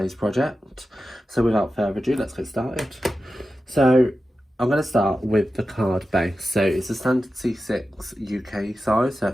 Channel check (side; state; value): both; normal; correlation 0.92